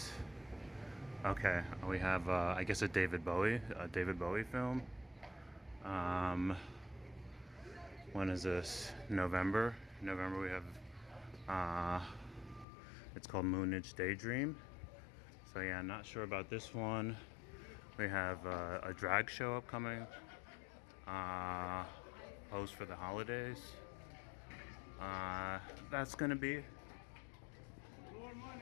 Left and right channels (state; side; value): drops out; right; at 12.7 s